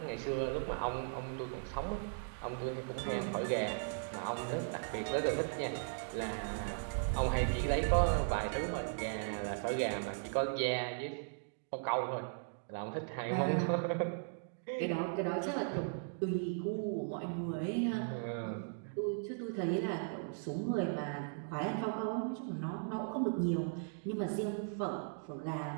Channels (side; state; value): left; silent; digital silence